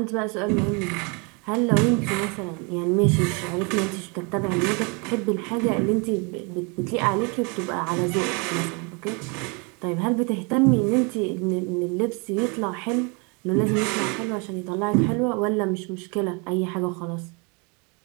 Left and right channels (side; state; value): left; quieter; 31.9 dB